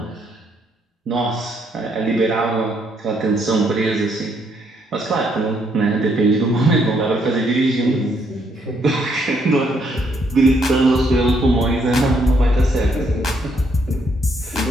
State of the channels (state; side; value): normal; both; correlation 0.72